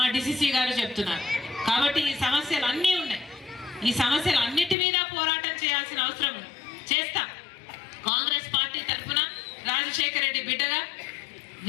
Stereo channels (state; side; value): drops out; right; at 4.8 s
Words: డిసిసి గారు చెప్తున్నారు. కాబట్టి ఈ సమస్యలు అన్నీ ఉన్నాయి. ఈ సమస్యలు అన్నిటి మీద పోరాటం చేయాల్సిన అవసరం ఉంది. చేస్తాం. కాంగ్రెస్ పార్టీ తరఫున రాజశేఖర రెడ్డి బిడ్డగా